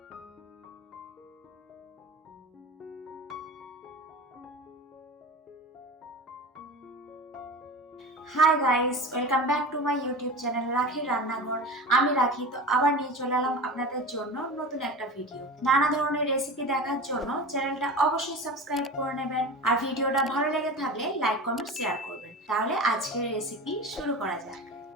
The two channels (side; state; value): both; normal; correlation 0.31